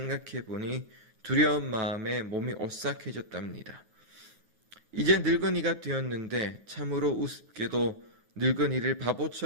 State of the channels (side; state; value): left; late; 9.7 ms